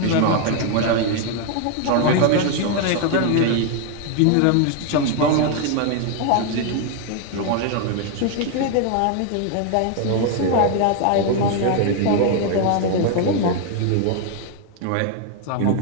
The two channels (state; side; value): different; both; correlation 0.00